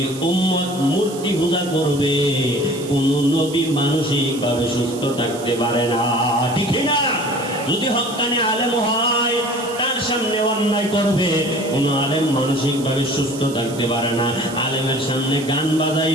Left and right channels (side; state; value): right; noise; hiss, 15 dB below the sound